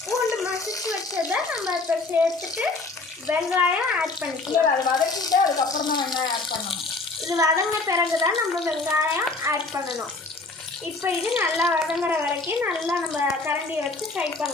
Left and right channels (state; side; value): quieter; right; 3.5 dB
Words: பூண்டு மசிச்சு வச்சதை நம்ம இப்போ சேர்த்துட்டு வெங்காயம் ஆட் பண்ணிக்கலாம். அதை வதக்கிட்டு அதுக்கப்புறம் தான் வெங்காயம் ஆட் பண்ணணும். இது வதங்கின பிறகு தான் நம்ம வெங்காயம் ஆட் பண்ணணும். இப்போ இது நல்லா வதங்குற வரைக்கும் நல்லா நம்ம கரண்டியை வச்சு ஃப்ரை